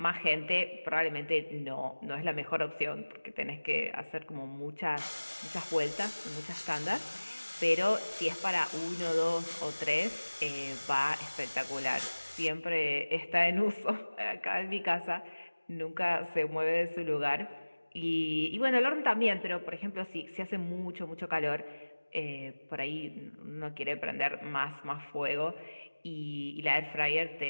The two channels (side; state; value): both; inverted; correlation -1.00